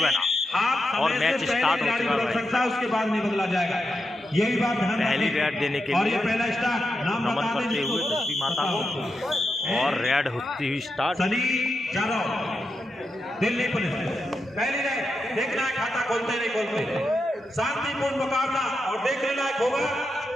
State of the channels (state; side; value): normal; both; correlation 0.86